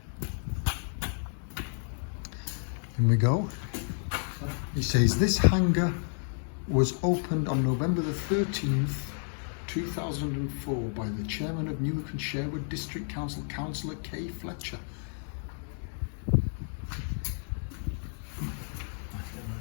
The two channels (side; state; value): right; silent; 57 dB below the other